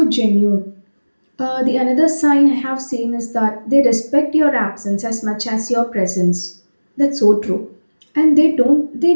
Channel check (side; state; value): both; inverted; correlation -1.00